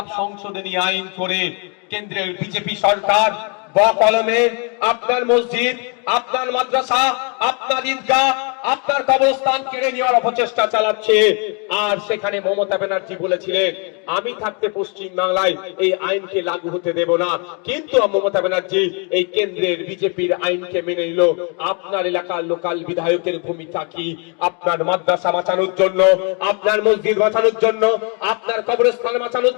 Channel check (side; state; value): right; quieter; 35.6 dB